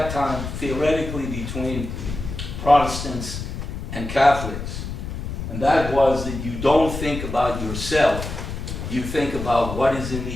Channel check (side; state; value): left; noise; rumble, 6 dB below the sound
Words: time, theoretically, between Protestants and Catholics. And that was that you don't think about yourself, you think about what is in